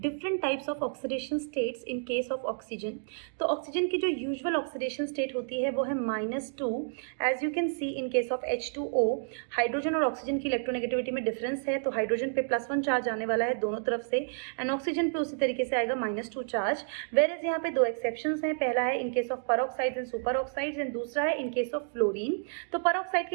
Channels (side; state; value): left; silent; digital silence